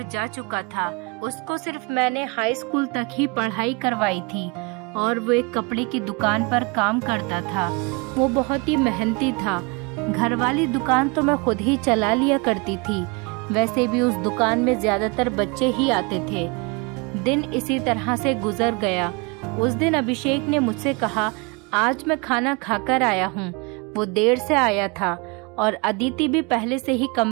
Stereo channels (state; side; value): quieter; left; 29.3 dB